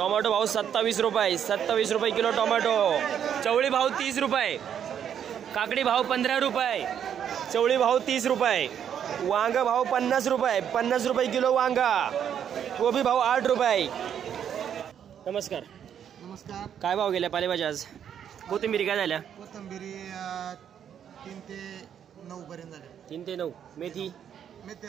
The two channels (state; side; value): quieter; left; 8.9 dB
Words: भाव 27 रुपये, 27 रुपये किलो टोमॅटो, चवळी भाव 30 रुपये, काकडी भाव 15 रुपये, चवळी भाव 30 रुपये, वांग भाव 50 रुपये, 50 रुपये किलो वांगा, कोबी भाव 8 रुपये. नमस्कार. नमस्कार. काय भाव गेल्या पालेभाज्या आज? कोथिंबिरी काय झाल्या? कोथिंबिरी 3 ते 9 पर्यंत झाल्या. 3 ते 9. मेथी